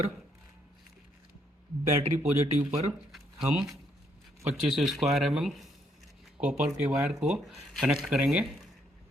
बैटरी पॉजिटिव पर हम 25 स्क्वायर mm कॉपर के वायर को कनेक्ट करेंगे।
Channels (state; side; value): normal; both; correlation 0.72